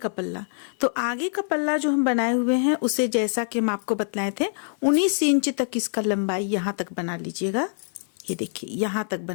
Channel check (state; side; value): silent; right; 56 dB below the other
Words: पल्ला। तो आगे का पल्ला जो हम बनाए हुए हैं उसे जैसा कि हम आपको बतलाए थे 19 इंच तक इसका लंबाई यहाँ तक बना लीजिएगा। ये देखिए यहाँ तक